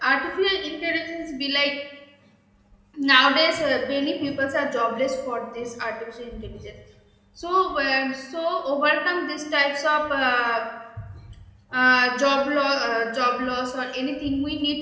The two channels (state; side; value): identical; both; correlation 1.00